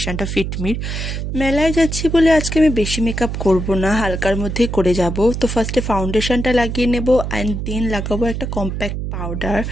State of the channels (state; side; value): noise; right; hum, 4 dB below the sound